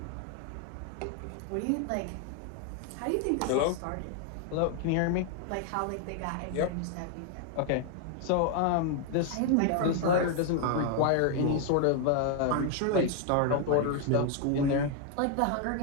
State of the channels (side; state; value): both; different; correlation 0.00